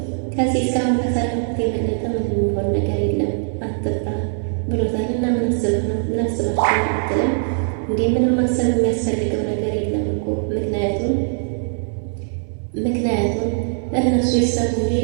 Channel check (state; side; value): silent; left; 62 dB below the other